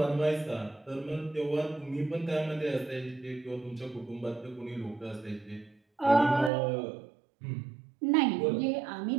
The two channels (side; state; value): left; drops out; at 6.5 s